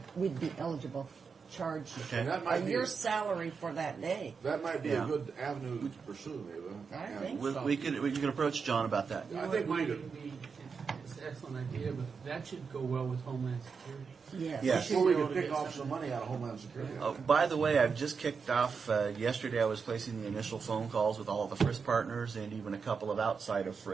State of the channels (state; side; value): quieter; left; 5.6 dB